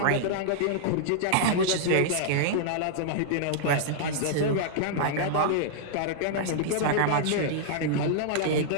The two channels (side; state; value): both; different; correlation -0.01